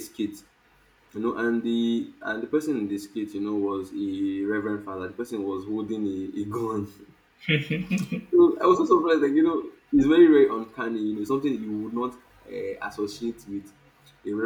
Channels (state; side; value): identical; both; correlation 1.00